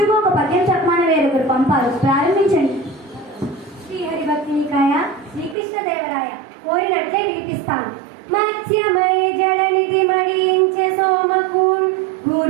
ఒక పద్యం చెప్పమని వేరొకరు పంపారు. ప్రారంభించండి. శ్రీహరి భక్తి నికాయ, శ్రీకృష్ణదేవరాయ. కోరినట్లే వినిపిస్తాను. మత్స్యమై జడనిధి మడించే సోమకూన్,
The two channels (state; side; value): drops out; left; at 5.6 s